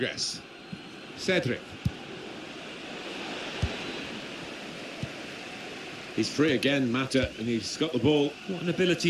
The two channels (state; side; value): identical; both; correlation 1.00